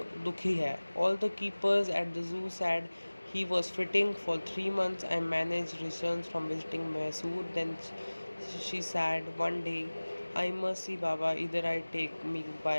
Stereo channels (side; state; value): both; inverted; correlation -1.00